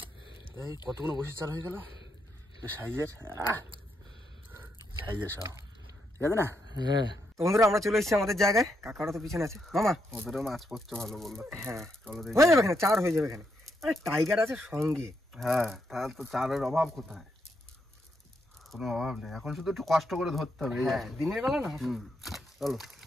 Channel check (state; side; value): normal; both; correlation 0.79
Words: এই কতগুলো বসে চাল হয়ে গেল সাইজের সব, ঠিক আছে না? হ্যাঁ তো বন্ধুরা, আমরা চলে এসেছি আমাদের জায়গায়। কাকারা তো পিছনে আছে। মামা ওদেরও মাছ পড়ছে ভালো বললো। হ্যাঁ হয়ে যাবে এখানে, চার হয়ে যাবে এখানে। আরে টাইগার আছে সঙ্গে। হ্যাঁ তাহলে তো চারের অভাব কোথায়? কোনো অভাব নেই, এখন শুধু একটু কষ্ট করে ধরতে হবে। হ্যাঁ দিনের বেলা না। চলো